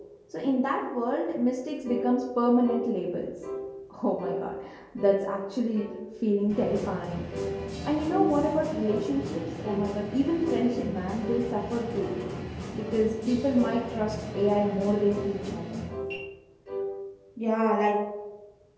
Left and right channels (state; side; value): identical; both; correlation 1.00